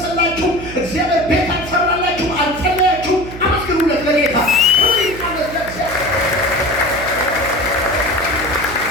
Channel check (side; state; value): right; noise; hum, 12 dB below the sound